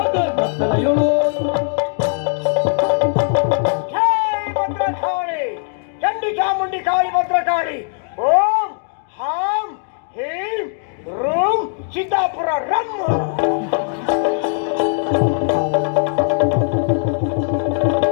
ಕತ್ತಲೆಯೊಳು ಜೈ ಭದ್ರಕಾಳಿ ಚಂಡಿ ಚಾಮುಂಡಿ ಕಾಳಿ ಭದ್ರಕಾಳಿ ಓಂ ಹಾಂ ಹೀಂ room Siddapura rum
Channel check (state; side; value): silent; right; digital silence